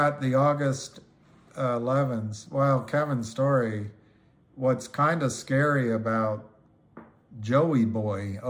the August 11s. Well, Kevin's story, what's kind of scary about Joey Boy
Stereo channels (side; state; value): both; identical; correlation 1.00